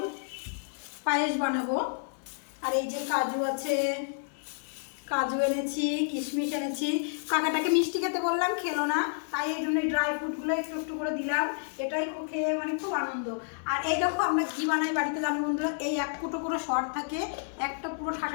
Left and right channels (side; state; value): right; silent; digital silence